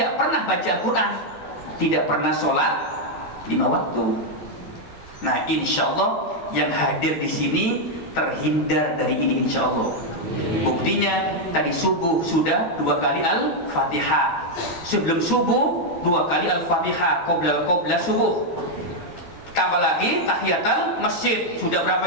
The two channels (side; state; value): right; late; 12 ms